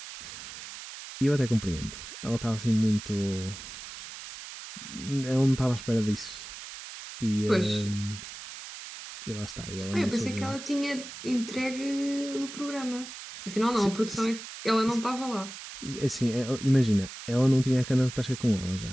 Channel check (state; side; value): noise; right; hiss, 12 dB below the sound